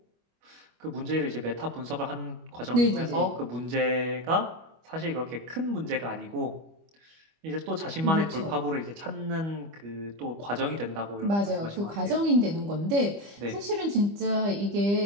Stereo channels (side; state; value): left; late; 25 ms